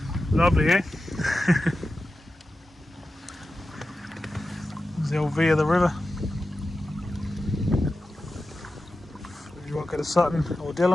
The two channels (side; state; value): both; normal; correlation 0.93